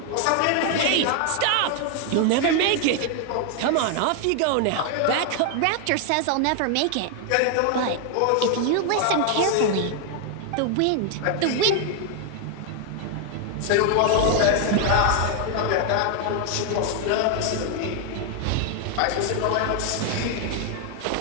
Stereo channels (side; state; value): both; different; correlation 0.00